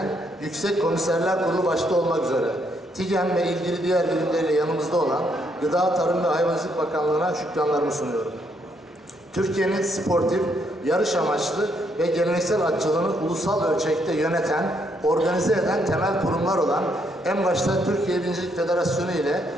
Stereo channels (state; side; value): normal; both; correlation 0.73